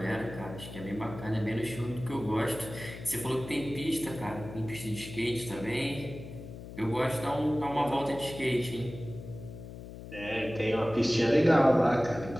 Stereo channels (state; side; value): noise; left; hum, 12 dB below the sound